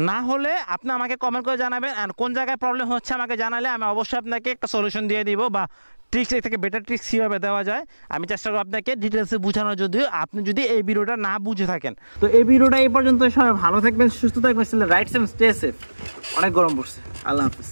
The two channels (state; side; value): inverted; both; correlation -1.00